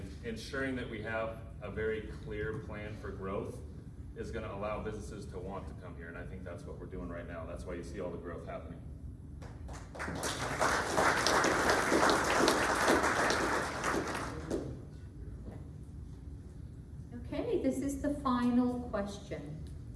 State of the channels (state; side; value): identical; both; correlation 1.00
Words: ensuring that we have a very clear plan for growth is going to allow businesses to want to come here. And I think that's what we're doing right now. That's why you see all the growth happening. Okay, this is the final question.